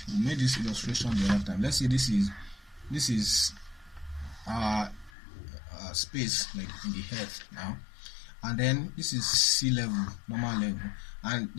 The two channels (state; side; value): drops out; right; at 5.1 s